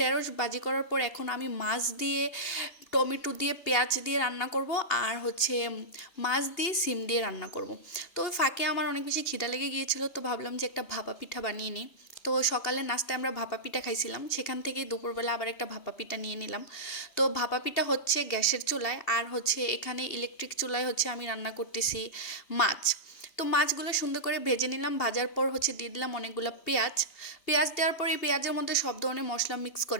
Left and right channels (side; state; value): right; late; 2.7 ms